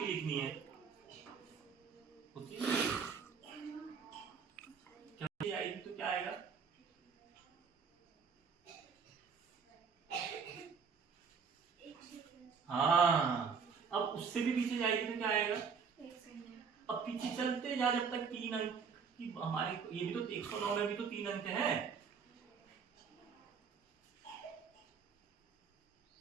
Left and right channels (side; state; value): left; quieter; 6.0 dB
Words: लिखनी है। होती है क्या आएगी तो क्या आएगा? हाँ, अब उससे भी पीछे जाएगी तो क्या आएगा? अब पीछे चलते जा जब तक 3 अंक की हमारे, ये भी तो 109 में भी तो 3 अंक है।